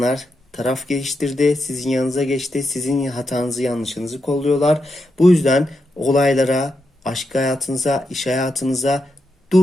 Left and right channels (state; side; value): normal; both; correlation 0.85